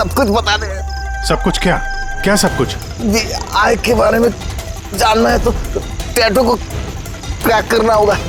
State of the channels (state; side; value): identical; both; correlation 1.00